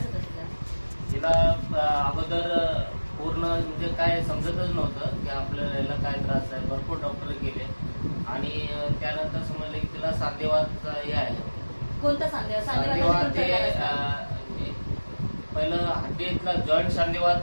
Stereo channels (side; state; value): both; inverted; correlation -1.00